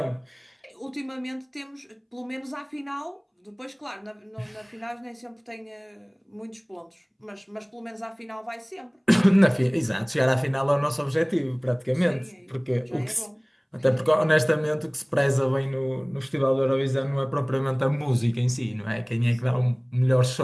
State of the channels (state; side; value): identical; both; correlation 1.00